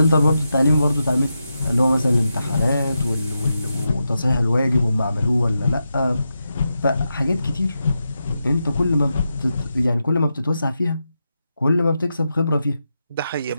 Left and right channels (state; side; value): inverted; both; correlation -0.88